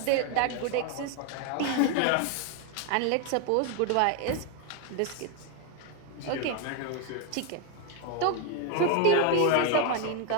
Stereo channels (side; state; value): both; different; correlation 0.01